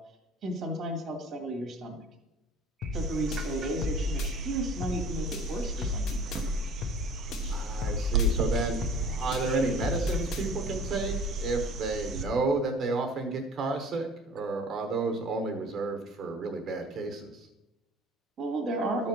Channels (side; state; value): both; normal; correlation 0.46